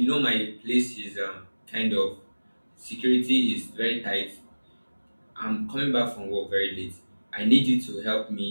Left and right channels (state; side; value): inverted; both; correlation -1.00